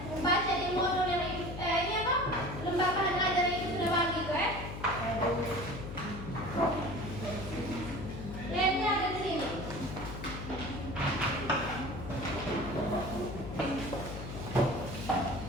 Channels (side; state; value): left; noise; hum, 8 dB below the sound